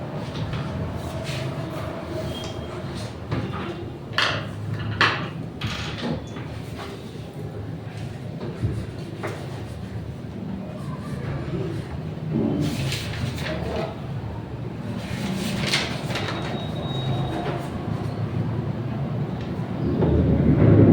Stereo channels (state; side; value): identical; both; correlation 1.00